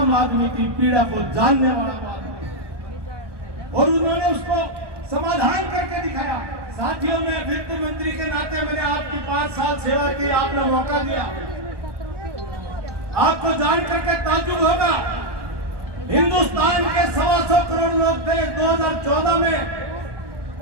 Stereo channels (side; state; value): left; late; 1.2 ms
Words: आदमी की पीड़ा को जानने वाला आदमी और उन्होंने उसको समाधान करके दिखाया। साथियों, में वित्त मंत्री के नाते मैंने आपकी 5 साल सेवा की, आपने मौका दिया। आपको जान करके ताज्जुब होगा, हिंदुस्तान के 125 करोड़ लोग थे 2014 में,